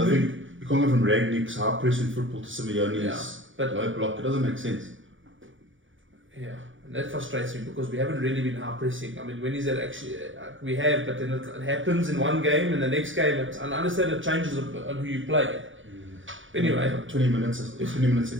I think you can't go from Ragnick's high pressing football to Simeone's low block. It doesn't make sense. Yeah, and that frustrates me because we haven't really been high pressing. I mean, when is that actually? We have, but then it happens in one game, and the next game, and I understand it changes on who you play. Anyway, 20 minutes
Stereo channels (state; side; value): late; left; 0.56 ms